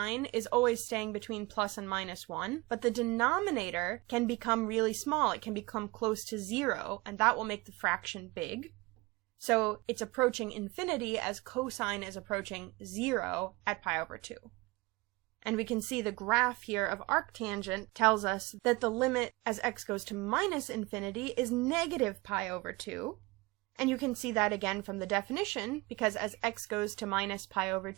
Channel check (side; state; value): left; quieter; 23.6 dB